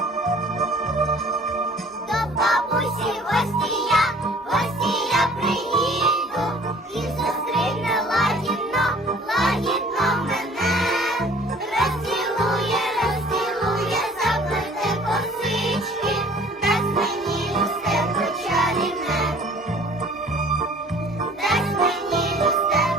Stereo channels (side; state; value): both; normal; correlation 0.51